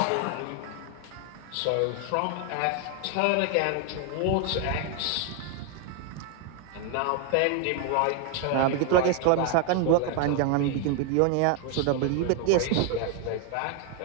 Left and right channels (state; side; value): different; both; correlation 0.01